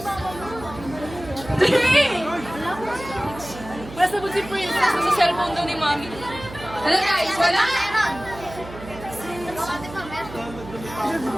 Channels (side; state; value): right; noise; hum, 14 dB below the sound